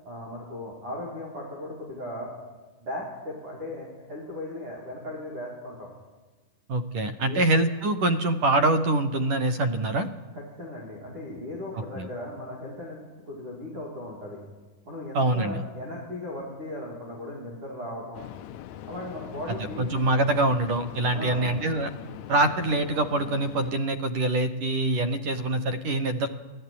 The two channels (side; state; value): left; late; 10 ms